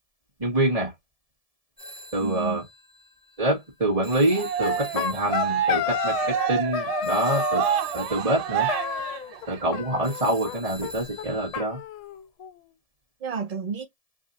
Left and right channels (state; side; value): late; left; 1.7 ms